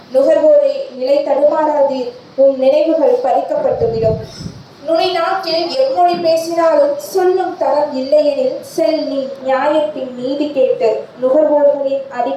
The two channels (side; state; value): both; identical; correlation 1.00